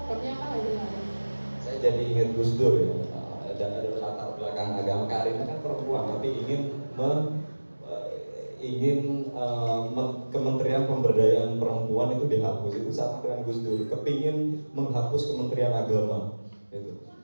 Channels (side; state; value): both; inverted; correlation -1.00